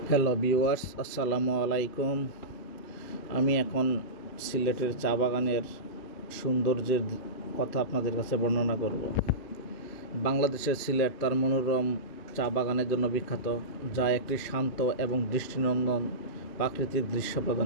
Hello viewers, আসসালামু আলাইকুম। আমি এখন সিলেটের চা বাগানের সৌন্দর্যের কথা আপনাদের কাছে বর্ণনা করব। বাংলাদেশের সিলেট তার মনোরম চা বাগানের জন্য বিখ্যাত, যা একটি শান্ত এবং দৃষ্টিনন্দন প্রাকৃতিক দৃশ্য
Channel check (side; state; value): right; late; 2.8 ms